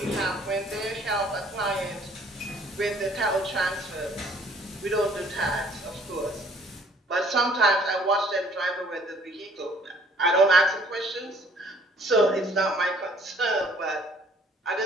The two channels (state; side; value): normal; both; correlation 0.58